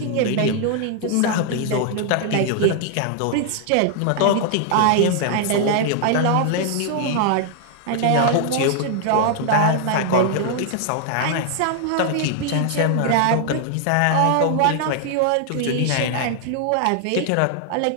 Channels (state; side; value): different; both; correlation 0.00